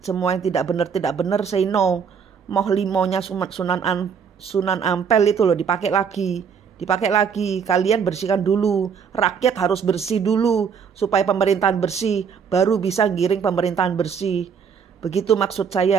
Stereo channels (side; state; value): left; quieter; 6.7 dB